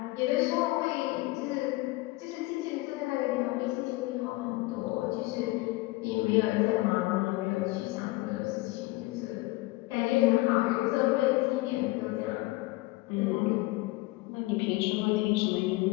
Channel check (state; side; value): quieter; right; 21.3 dB